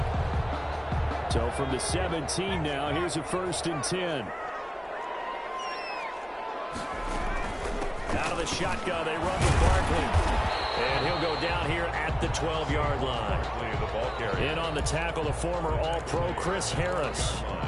So from the 17 now, here's a 1st and 10. Out of the shotgun, they run with Barkley. And he'll go down here at the 12-yard line. In on the tackle, the former All-Pro Chris Harris.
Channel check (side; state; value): both; identical; correlation 1.00